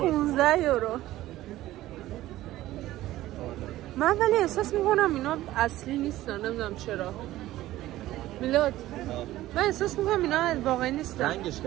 یورو. من ولی احساس میکنم اینا اصلی نیستن، نمیدونم چرا. میلاد من احساس میکنم اینا واقعی نیستن. رنگش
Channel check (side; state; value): left; quieter; 15.5 dB